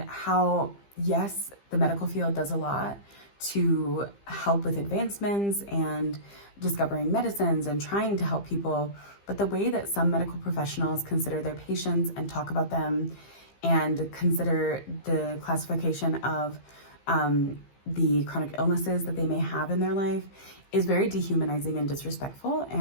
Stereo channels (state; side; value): late; right; 15 ms